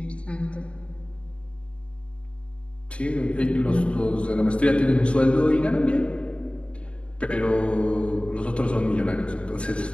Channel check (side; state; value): right; late; 0.059 ms